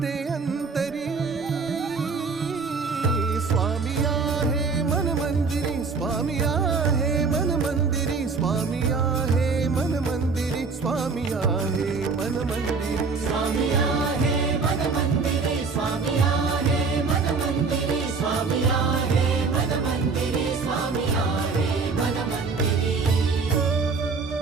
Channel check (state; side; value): quieter; left; 4.6 dB